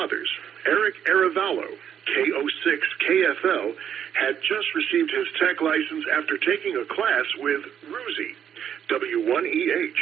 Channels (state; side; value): quieter; left; 9.0 dB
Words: Eric Aravallo, KO6 KFL, had just received his tech license after taking a class with Ruzi,